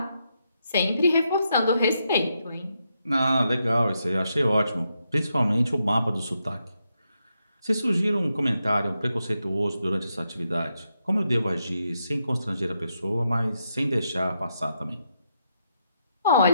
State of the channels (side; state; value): both; inverted; correlation -0.82